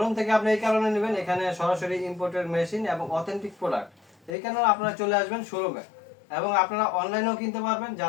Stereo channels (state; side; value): drops out; right; at 4.4 s